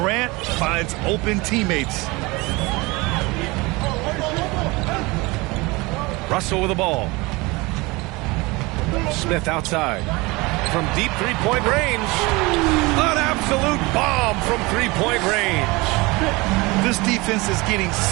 finds open teammates. Russell with the ball. Smith outside. From deep three-point range. An absolute bomb from three-point range. This defense is getting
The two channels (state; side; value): quieter; left; 23.7 dB